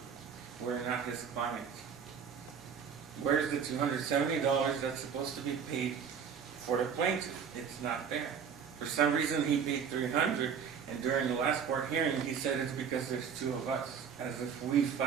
We're not his clients. Where's the $270 that's supposed to be paid for the plaintiff? It's not there. For some reason, he paid $300, and during the last court hearing, he said it's because there's two of us, as if we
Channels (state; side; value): quieter; left; 7.1 dB